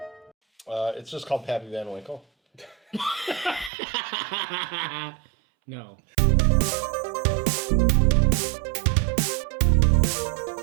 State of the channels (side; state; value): left; drops out; at 3.7 s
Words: It's just called Pappy Van Winkle. No.